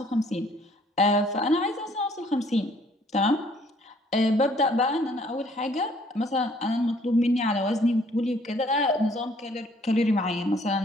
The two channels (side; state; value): both; normal; correlation 0.61